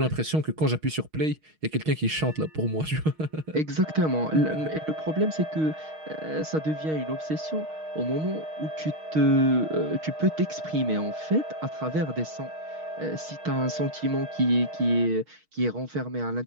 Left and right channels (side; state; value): left; late; 6.4 ms